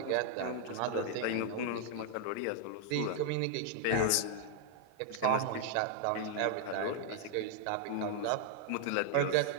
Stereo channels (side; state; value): both; different; correlation 0.00